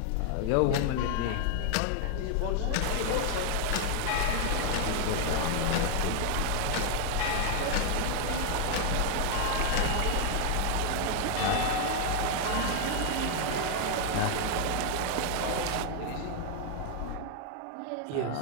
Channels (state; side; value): different; both; correlation 0.00